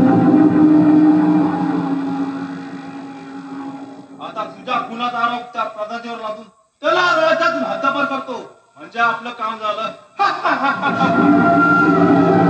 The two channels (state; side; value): identical; both; correlation 1.00